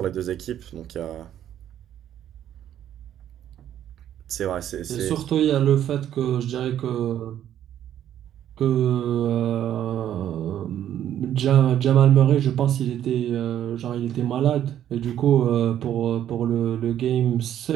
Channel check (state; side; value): quieter; left; 10.9 dB